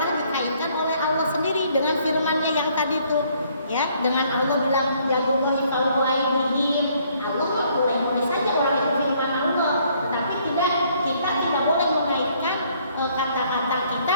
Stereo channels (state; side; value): inverted; both; correlation -0.65